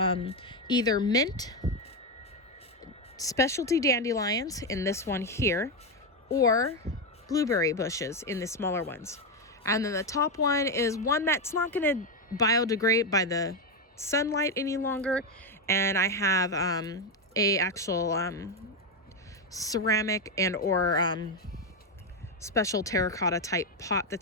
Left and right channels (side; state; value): both; normal; correlation 0.08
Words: either mint, specialty dandelions in this one here, or blueberry bushes in the smaller ones. And then the top one is one that's not going to biodegrade by the sunlight any longer. And I have a actual ceramic and or special terracotta type pot